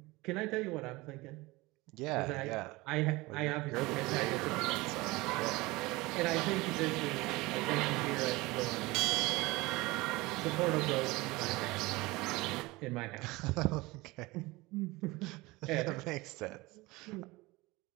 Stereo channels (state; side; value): quieter; left; 21.9 dB